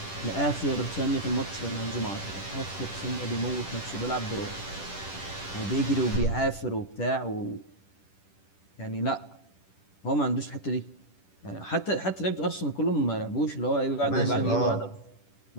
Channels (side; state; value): right; late; 10 ms